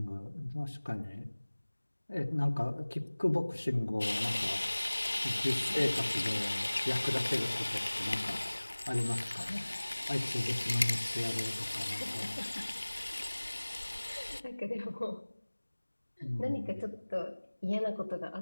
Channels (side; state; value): both; inverted; correlation -1.00